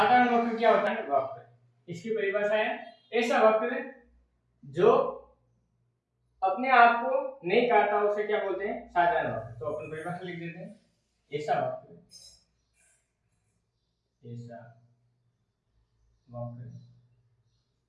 वक्र क्या होता है? वक्र, इसकी परिभाषा है ऐसा वक्र जो अपने आप को नहीं काटता, उसे क्या बोलते हैं? साधारण वक्र। तो अपन परिभाषा लिख देते हैं, ऐसा वक्र, ऐसा वक्र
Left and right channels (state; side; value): identical; both; correlation 1.00